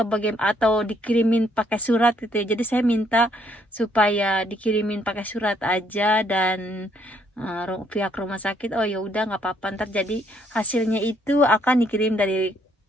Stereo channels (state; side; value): normal; both; correlation 0.69